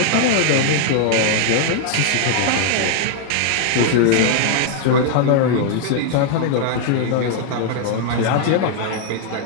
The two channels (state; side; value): different; both; correlation 0.00